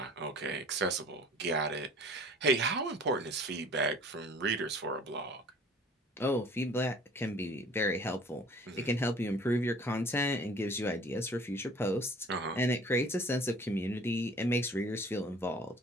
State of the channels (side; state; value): both; normal; correlation 0.49